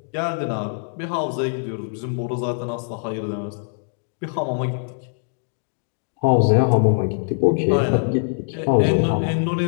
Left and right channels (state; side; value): silent; right; digital silence